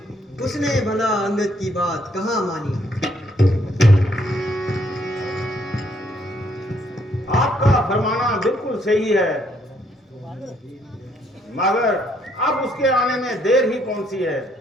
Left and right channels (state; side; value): normal; both; correlation 0.69